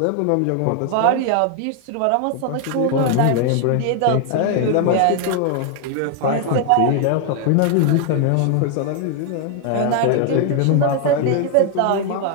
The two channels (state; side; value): different; both; correlation 0.00